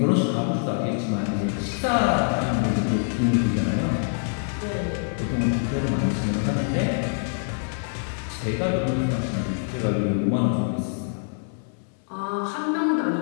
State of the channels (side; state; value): right; silent; digital silence